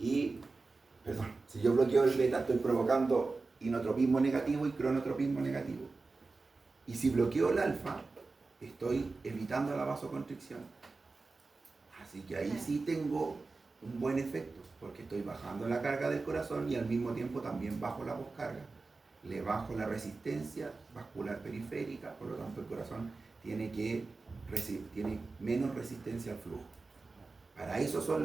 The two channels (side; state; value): left; quieter; 3.8 dB